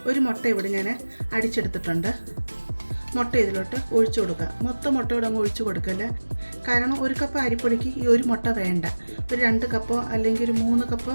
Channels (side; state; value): both; inverted; correlation -1.00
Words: 1 മുട്ട ഇവിടെ ഞാൻ അടിച്ചെടുത്തിട്ടുണ്ട്. മുട്ട ഇതിലോട്ട് ഒഴിച്ചു കൊടുക്കുക. മൊത്തം മുട്ടയോടെ അങ്ങ് ഒഴിച്ചു കൊടുക്കല്ല. കാരണം 1 കപ്പ് അരിപ്പൊടിക്ക് ഈ 1 മുട്ട വേണ്ട. ഒരു 2 കപ്പോ അല്ലെങ്കിൽ ഒരു 3 കപ്പോ